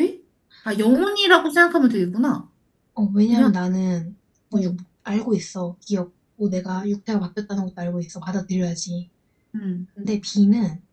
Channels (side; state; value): both; identical; correlation 1.00